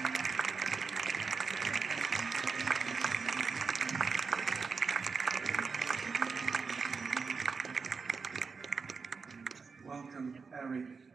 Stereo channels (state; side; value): quieter; left; 5.0 dB